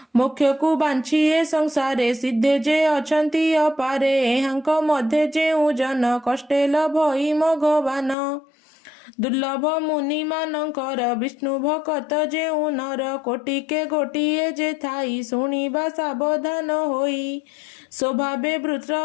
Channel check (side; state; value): right; drops out; at 8.2 s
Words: ମୋକ୍ଷକୁ ବାଞ୍ଛି ଏ ସଂସାରେ ସିଦ୍ଧେ ଯେ ଅଛନ୍ତି ଅପାରେ ଏହାଙ୍କ ମଧ୍ୟରେ ଯେଉଁ ଜନ କଷ୍ଟେ ଲଭଇ ଭଗବାନ ଦୁର୍ଲଭ ମୁନିମାନଙ୍କର ବିଷ୍ଣୁ ଭକତ ଯେଉଁ ନର କୋଟିକେ ଗୋଟିଏ ଯେ ଥାଇ ଶୁଣିବା ସାବଧାନ ହୋଇ ସ୍ୱଭାବେ ବୃତ୍ର